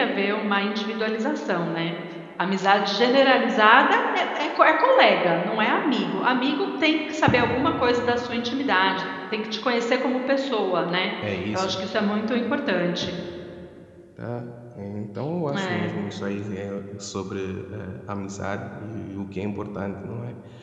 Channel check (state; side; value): identical; both; correlation 1.00